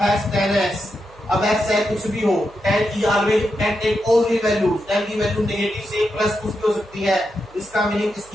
10x। अब x चाहे कुछ भी हो, 10 की always 10 take all real value, 10 की वैल्यू नेगेटिव से प्लस कुछ भी हो सकती है। इसका मीनिंग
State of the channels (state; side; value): noise; right; hum, 25 dB below the sound